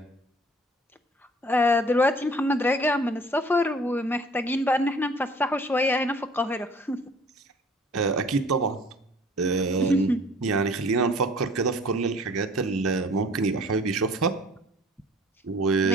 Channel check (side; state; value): both; normal; correlation 0.51